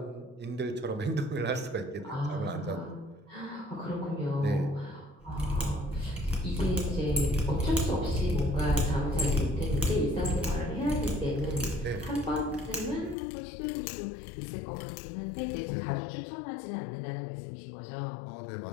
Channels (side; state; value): right; drops out; at 13.2 s